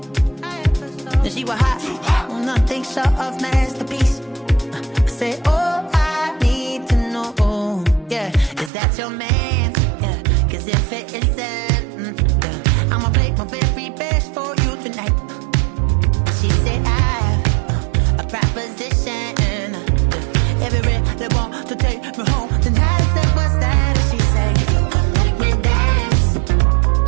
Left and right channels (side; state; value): left; drops out; at 8.7 s